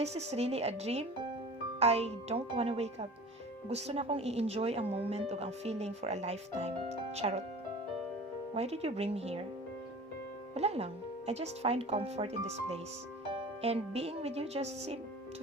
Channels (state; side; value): normal; both; correlation 0.40